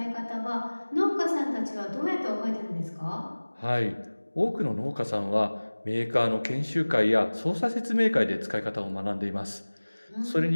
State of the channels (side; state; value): both; inverted; correlation -1.00